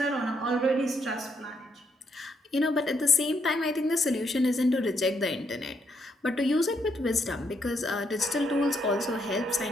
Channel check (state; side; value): normal; both; correlation 0.75